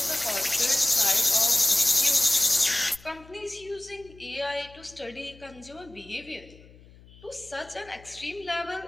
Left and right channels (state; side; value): noise; left; hum, 23 dB below the sound